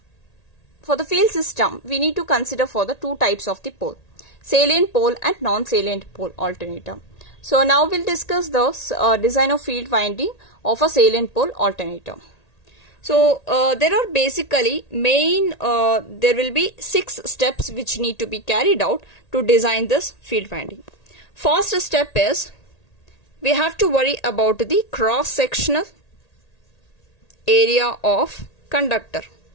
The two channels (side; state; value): right; late; 1.8 ms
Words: For the field system, we need to consider for the two types of the pole, salient pole and non-salient pole alternator. So now we'll discuss the design of field winding of a salient pole alternator. So there are basically there will be 6 steps which need to be carried out to design this field winding. First step is we have to worry about the cross-sectional area of conductor.